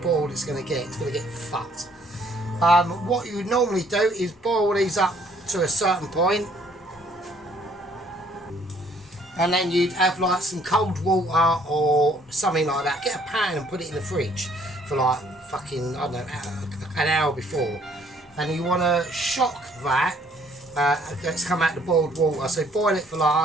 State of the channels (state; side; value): normal; both; correlation 0.62